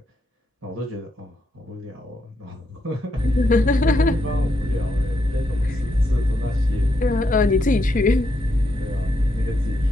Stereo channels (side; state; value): both; normal; correlation 0.80